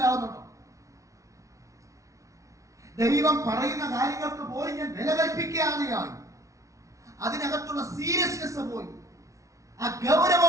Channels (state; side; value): late; left; 0.15 ms